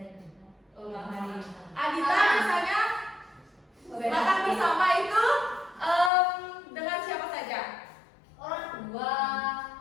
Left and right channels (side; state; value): right; drops out; at 6.1 s